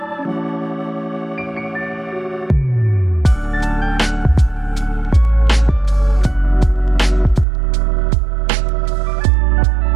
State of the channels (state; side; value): drops out; left; at 7.5 s